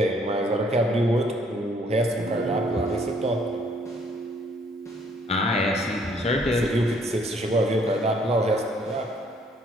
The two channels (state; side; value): normal; both; correlation 0.64